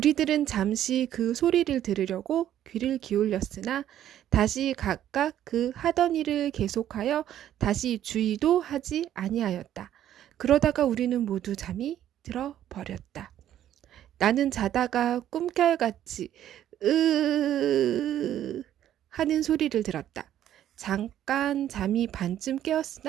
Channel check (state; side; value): quieter; left; 11.5 dB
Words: 잠시 그 소리를 들으려고 귀를 기울였으나 다시 각각 그 하던 일을 계속하여 다시 주의도 하지 아니하였다. 그러다가 우리는 모두 잠이 들어버렸다. 나는 자다가 꿈결같이 으 하는 소리를 들었다. 잠깐 잠이 반쯤